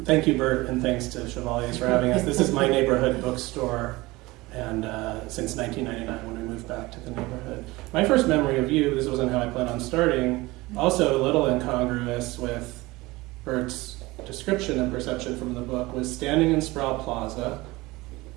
thank you, Bert, and thanks to Chevalier for having us. This is my neighborhood bookstore, and since 1999 when we moved back to the neighborhood. My first memory of you, this wasn't how I planned on starting, also a little incongruous with Bert's description and perception from the book, was standing in Sproul Plaza.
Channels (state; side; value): quieter; left; 21.0 dB